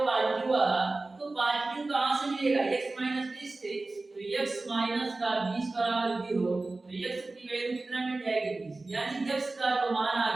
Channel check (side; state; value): left; quieter; 3.2 dB